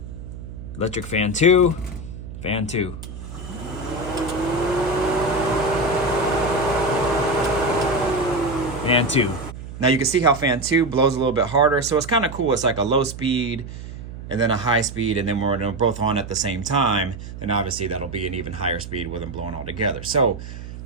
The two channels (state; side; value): noise; right; hum, 11 dB below the sound